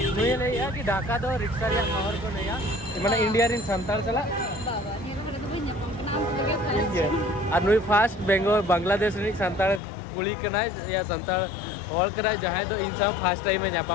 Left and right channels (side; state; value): right; drops out; at 9.8 s